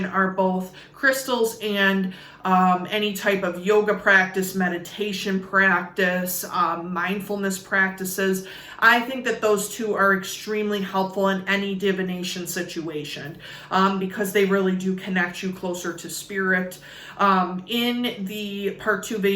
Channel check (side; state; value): both; identical; correlation 1.00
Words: are both crystals and any type of yoga practice, meditation practice, mindfulness practices. I think that those two are extremely helpful in any divination situation because they really do connect you closer to spirit. In the part 2